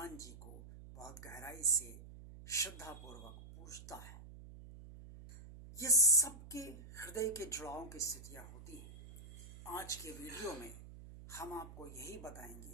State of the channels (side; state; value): right; noise; hum, 15 dB below the sound